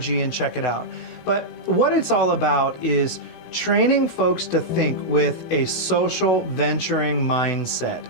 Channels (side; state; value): right; late; 18 ms